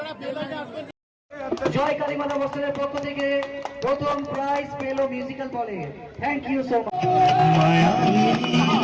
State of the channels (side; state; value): both; identical; correlation 1.00